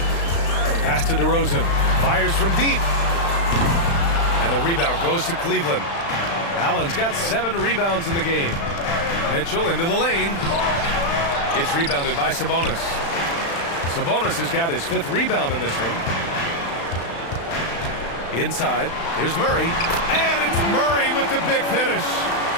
Pass to DeRozan. Fires from deep. And the rebound goes to Cleveland. Allen's got 7 rebounds in the game. Mitchell into the lane. It's rebounded by Sabonis. Sabonis has got his 5th rebound in this one. Inside, here's Murray. And it's Murray with the big finish.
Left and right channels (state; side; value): late; right; 35 ms